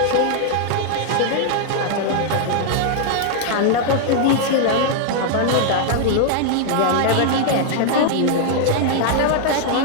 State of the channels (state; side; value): different; both; correlation 0.00